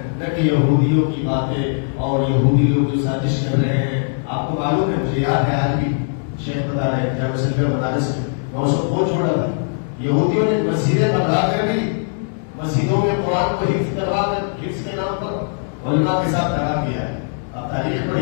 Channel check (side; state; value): right; silent; digital silence